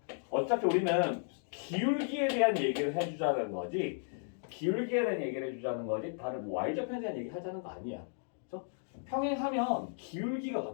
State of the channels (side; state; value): right; silent; digital silence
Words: 어차피 우리는 기울기에 대한 얘기를 해주자는 거지 기울기에 대한 얘기를 해주자는 거지 다른 뭐 y절편에 대한 얘기 하자는 거 아니야. 그렇죠? 평행하면 기울기가